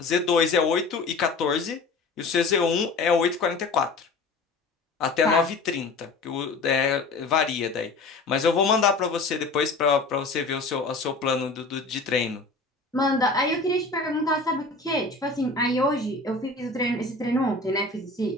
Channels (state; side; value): quieter; right; 3.7 dB